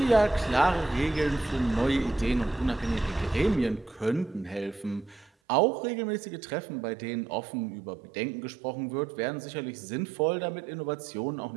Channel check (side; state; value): left; drops out; at 5.3 s